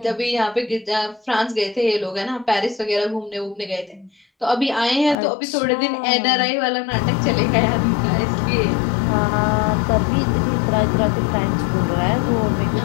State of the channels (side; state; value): right; drops out; at 5.2 s